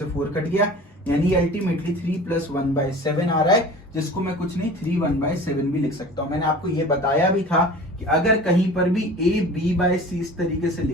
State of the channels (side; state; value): both; normal; correlation 0.40